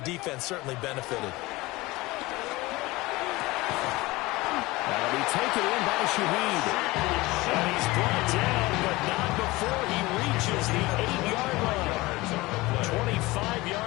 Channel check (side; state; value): right; quieter; 20.9 dB